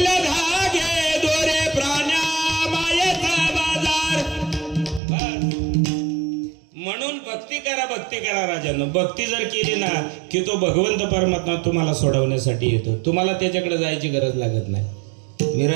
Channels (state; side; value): drops out; left; at 5.0 s